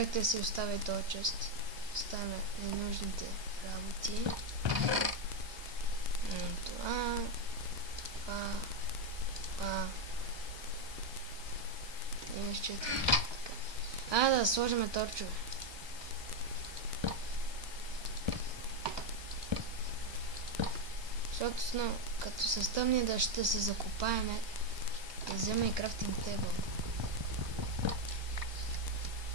да си оставя този чест. Оставяме ненужните работи. Това. И нещо е така. Да сложим торчове. Защото като се стъмни да ще се закопаеме, да взема и крафтинг тейбъл.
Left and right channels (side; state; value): left; late; 1.2 ms